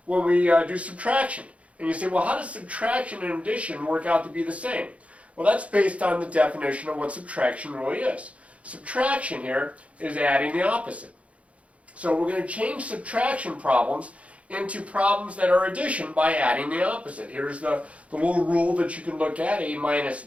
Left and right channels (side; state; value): left; late; 0.064 ms